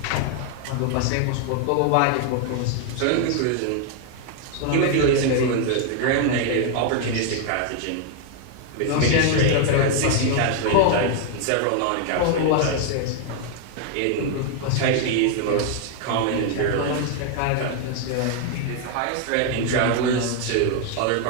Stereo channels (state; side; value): different; both; correlation 0.00